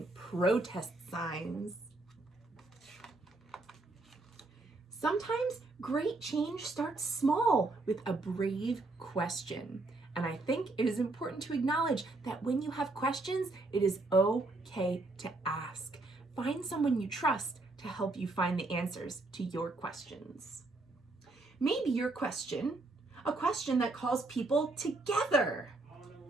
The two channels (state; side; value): quieter; left; 3.1 dB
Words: protest signs. Sometimes great change starts small with a brave question. And I think it is important to acknowledge that when you have questions, it is okay to ask. Find someone you trust to help you find the answers to your questions. Maybe your question, a question that calls people together.